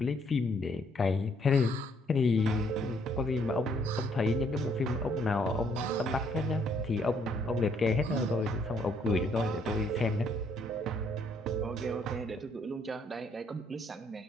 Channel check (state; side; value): normal; both; correlation 0.68